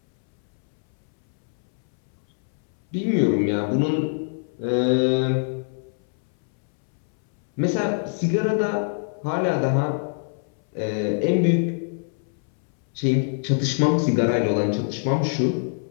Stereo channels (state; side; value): silent; right; 63 dB below the other